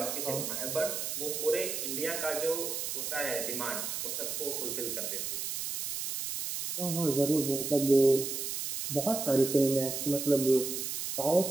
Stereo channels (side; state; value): right; noise; hiss, 3 dB below the sound